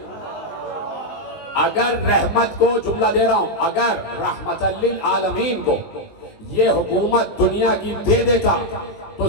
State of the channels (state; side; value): late; right; 19 ms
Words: اگر رحمت کو، جملہ دے رہا ہوں، اگر رحمت للعالمین کو یہ حکومت دنیا کی دے دیتا تو